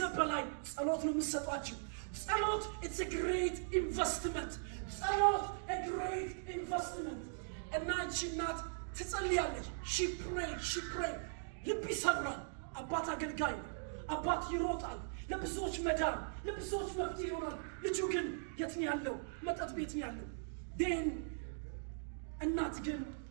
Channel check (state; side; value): silent; left; digital silence